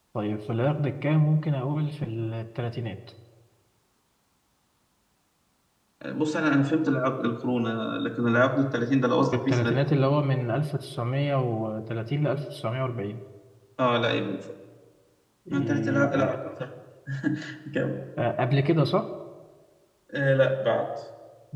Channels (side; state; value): both; identical; correlation 1.00